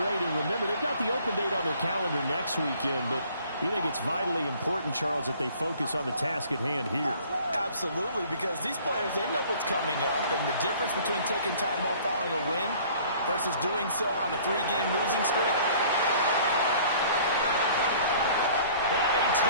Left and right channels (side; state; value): both; inverted; correlation -0.53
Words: And remember, they've got the open date on their calendar next weekend, but you think it's vitally important, Charles, that they focus on the task at hand here? Absolutely, because these players, they know what's coming up, and the difference between taking time off following a win versus doing so on a 3-game losing streak. And he